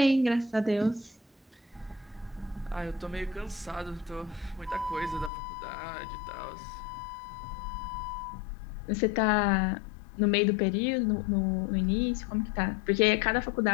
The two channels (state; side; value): drops out; right; at 5.3 s